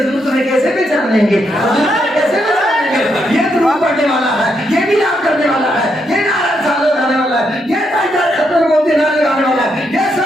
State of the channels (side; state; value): both; normal; correlation 0.79